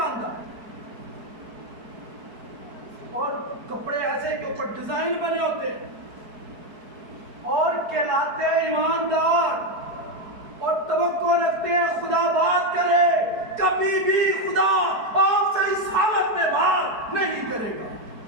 اور کپڑے ایسے کے اوپر ڈیزائن بنے ہوتے ہیں اور کہلاتے ہیں ایماندار اور توقع رکھتے ہیں خدا بات کرے. کبھی بھی خدا آپ سے اس حالت میں بات نہیں کرے گا.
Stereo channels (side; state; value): left; late; 4.6 ms